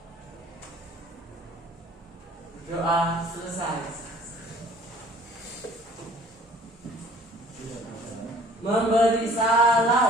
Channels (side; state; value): both; normal; correlation 0.53